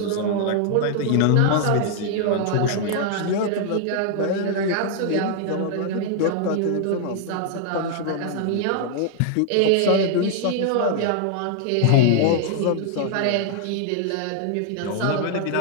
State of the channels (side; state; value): both; different; correlation 0.00